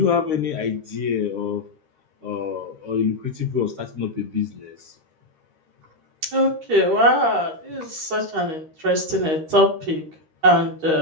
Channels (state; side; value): late; left; 13 ms